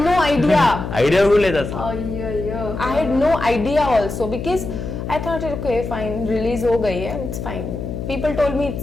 no idea. Idea కూడా లేదు అసలు. అయ్యో. I had no idea also, because I thought, okay, fine, release ho gayi hai, it's fine. People told me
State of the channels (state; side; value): noise; left; hum, 6 dB below the sound